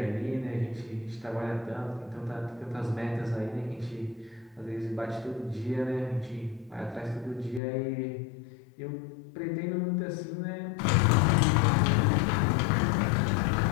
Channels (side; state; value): right; drops out; at 7.6 s